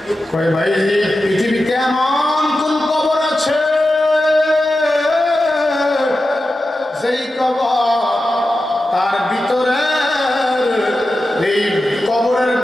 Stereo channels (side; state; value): both; normal; correlation 0.92